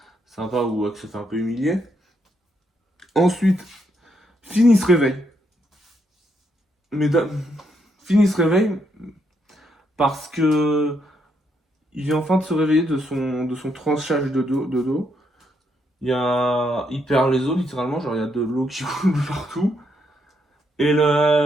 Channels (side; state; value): both; normal; correlation 0.76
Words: sympa où Hux se fait un peu humilier. Ensuite, Fini se réveille. Mesdames, Fini se réveille parce que il vient enfin de se réveiller de son tranchage de dos. Il perd les os littéralement, genre il y a de l'eau qui coule partout. Et